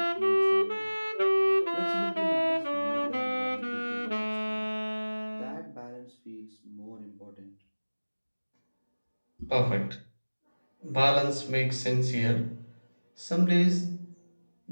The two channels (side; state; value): both; inverted; correlation -1.00